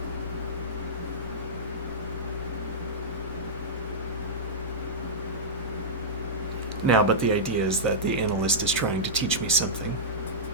Now, but the idea is that the analyst is trying to teach me something.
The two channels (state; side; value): normal; both; correlation -0.13